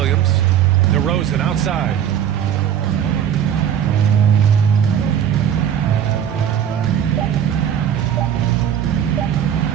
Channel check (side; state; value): left; quieter; 9.3 dB